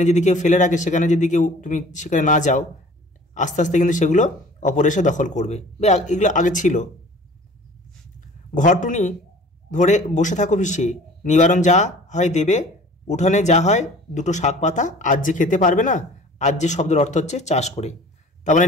যদি কেউ ফেলে রাখে, সেখানে যদি তুমি সেখানে না যাও, আস্তে আস্তে কিন্তু সেগুলো অপর এসে দখল করবে। এগুলো আগে ছিল। ঘরটুনি ধরে বসে থাকো পিছিয়ে, নিবারণ যা হয় দেবে, উঠানে যা হয় 2টো শাক পাতা, আজ যে খেতে পারবে না। আজ যে শব্দের অর্থ হচ্ছে চাষ করে। তার মানে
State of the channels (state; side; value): normal; both; correlation 0.47